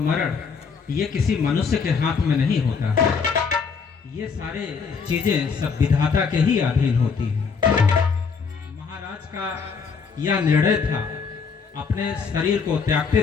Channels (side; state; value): right; quieter; 5.6 dB